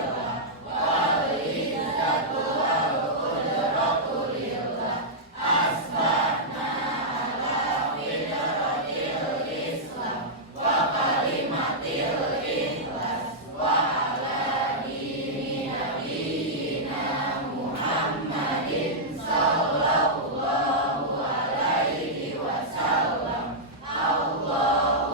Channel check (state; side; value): normal; both; correlation -0.09